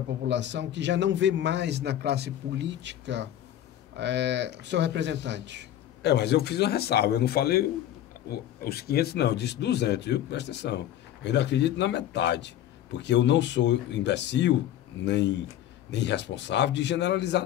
população que já não vê mais na classe política seu representante. Mas eu fiz uma ressalva, eu não falei os 500, não, eu disse 200, viu? Presta atenção. Eu ainda acredito na metade, porque eu não sou imbecil, nem irresponsável de generalizar,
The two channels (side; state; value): right; quieter; 11.9 dB